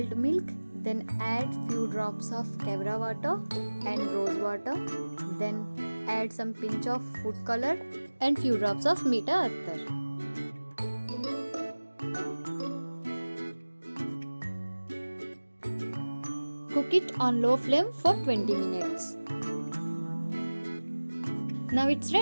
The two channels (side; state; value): both; inverted; correlation -1.00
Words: milk, then add few drops of kevra water and rose water. Then add some pinch of food color and few drops of meeta attar. Cook it on low flame for 20 minutes. Now it's